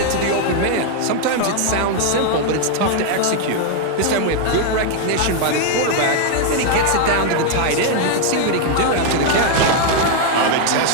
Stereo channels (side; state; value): both; different; correlation 0.00